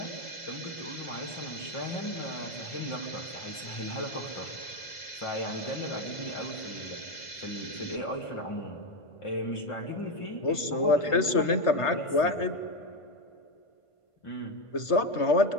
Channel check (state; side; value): late; right; 1.5 ms